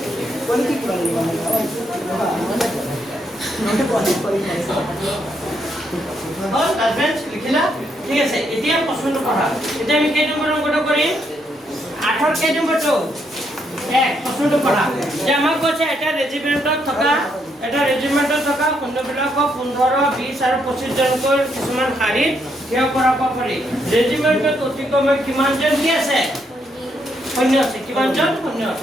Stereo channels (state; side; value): normal; both; correlation 0.76